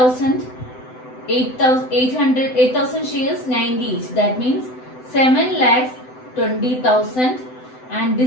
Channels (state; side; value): late; right; 7.9 ms